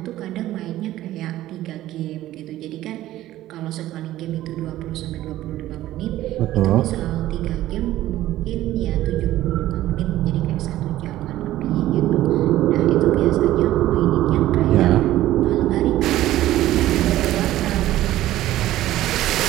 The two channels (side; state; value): left; quieter; 14.6 dB